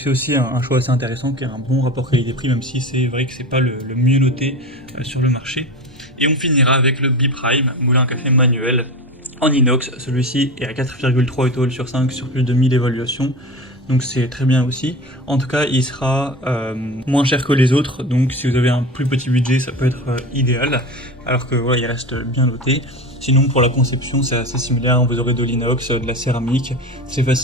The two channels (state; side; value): normal; both; correlation 0.28